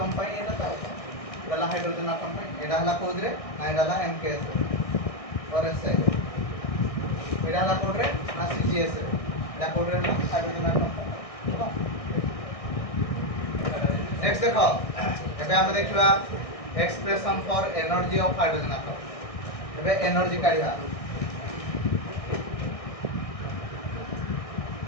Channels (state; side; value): late; right; 1.6 ms